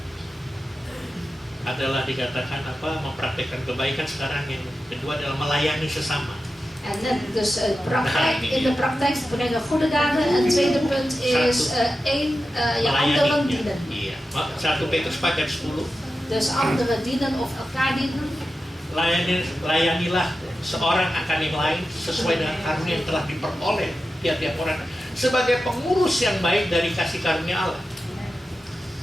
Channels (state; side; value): normal; both; correlation 0.92